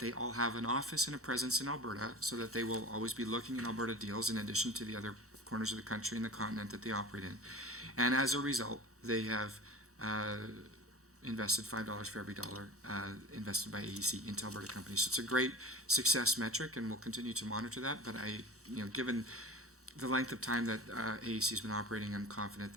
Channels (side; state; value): both; normal; correlation 0.36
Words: they all have an office and a presence in Alberta so that they will always be looking in Alberta deals in addition to the other corners of the country and the continent that they operate in. And as a result, they have invested $5 for every dollar invested by AEC into Alberta companies. So it's a great success metric, and we'll continue to monitor that. But given the length of time that AEC has been operating, I'm confident